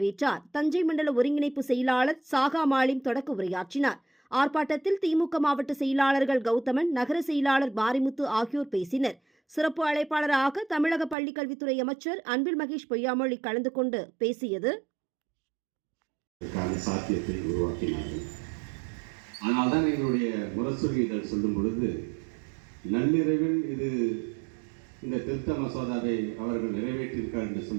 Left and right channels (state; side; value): drops out; left; at 11.2 s